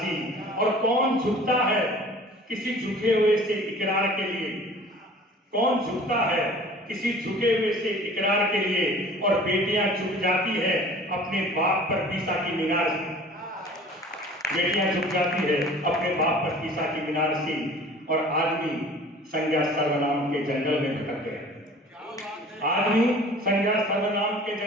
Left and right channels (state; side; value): normal; both; correlation 0.46